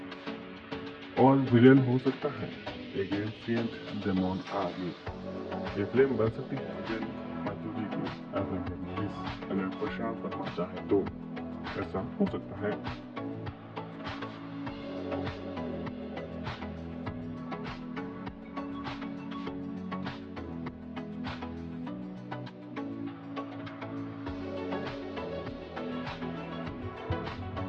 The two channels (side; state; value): both; identical; correlation 1.00